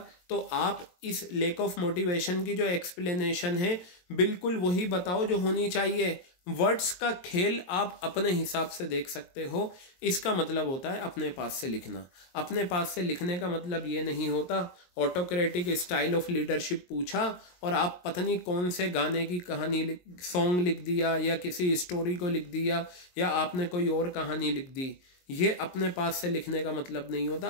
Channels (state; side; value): late; right; 22 ms